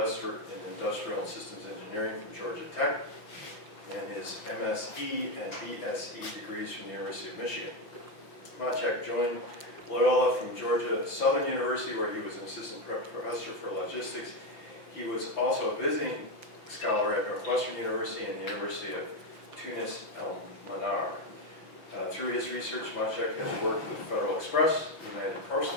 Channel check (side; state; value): right; late; 5.9 ms